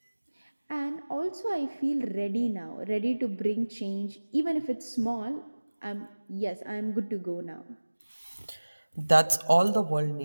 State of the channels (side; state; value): both; inverted; correlation -1.00